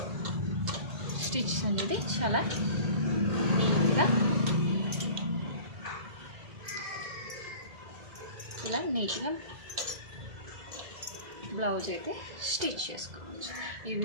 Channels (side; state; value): left; late; 2.0 ms